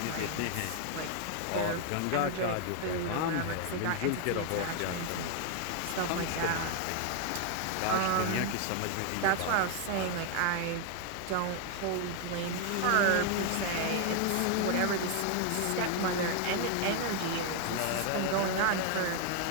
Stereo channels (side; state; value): both; different; correlation 0.00